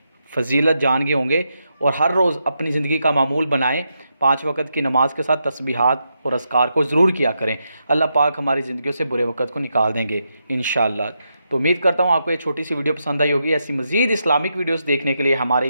फ़जीलत जान गए होंगे और हर रोज़ अपनी ज़िंदगी का मामूल बनाएं। 5 वक़्त की नमाज के साथ तस्बीहात और अज़कार को ज़रूर किया करें। अल्लाह पाक हमारी ज़िंदगियों से बुरे वक़्त को निकाल देंगे इंशाअल्लाह। तो उम्मीद करता हूँ आपको ये छोटी सी वीडियो पसंद आई होगी। ऐसी मज़ीद इस्लामिक वीडियोज़ देखने के लिए हमारे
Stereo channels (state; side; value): inverted; both; correlation -0.84